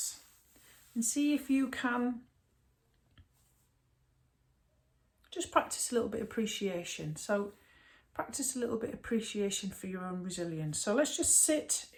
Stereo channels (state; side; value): identical; both; correlation 1.00